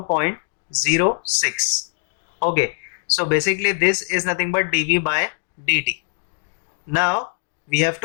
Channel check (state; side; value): silent; right; digital silence